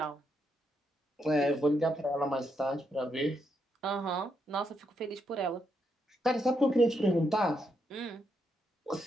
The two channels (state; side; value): normal; both; correlation 0.79